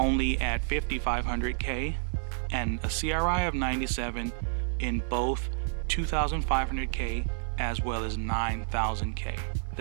at 5500K, and a CRI of 97 in both 2500K as well as 9000K.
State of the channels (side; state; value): left; silent; 58 dB below the other